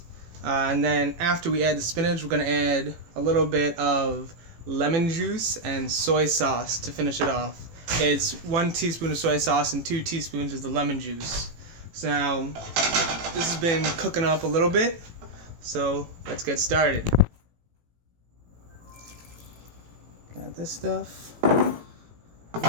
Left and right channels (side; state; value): left; late; 18 ms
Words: And then after we add the spinach, we're going to add a little bit of lemon juice and soy sauce to finish it off. It's 1 teaspoon of soy sauce and 2 teaspoons of the lemon juice. So now, this has been cooking up a little bit, so let's get started. Got this stuff. I'm